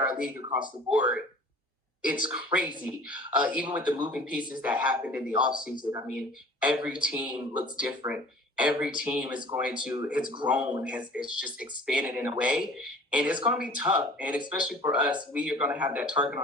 league across the board, it's crazy. Even with the moving pieces that happened in the offseason, I mean, every team looks different. Every team it's grown, it's just expanded in a way. And it's going to be tough. And especially for us, we are going to have that target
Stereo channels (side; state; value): both; normal; correlation 0.47